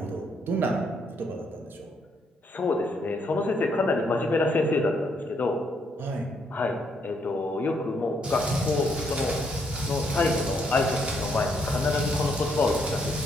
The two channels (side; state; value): both; normal; correlation 0.73